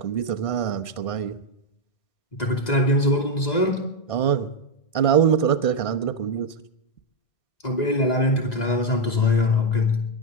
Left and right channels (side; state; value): right; late; 2.0 ms